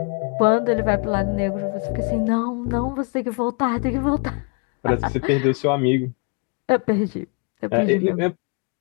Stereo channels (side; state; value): right; quieter; 34.9 dB